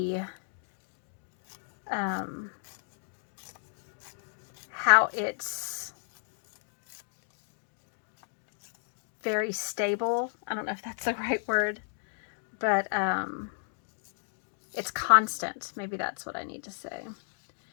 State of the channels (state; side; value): silent; right; digital silence